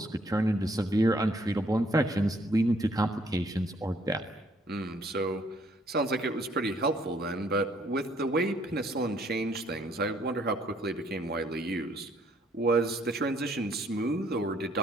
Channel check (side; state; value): both; normal; correlation 0.65